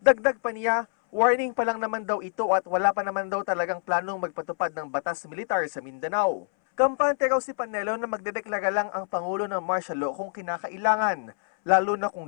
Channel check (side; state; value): right; silent; 61 dB below the other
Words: pa niya, warning pa lang naman daw ito at wala pa naman daw talagang planong magpatupad ng batas militar sa Mindanao. Kampante raw si Panelo na magdedeklara lang ang Pangulo ng martial law kung kinakailangan, lalo na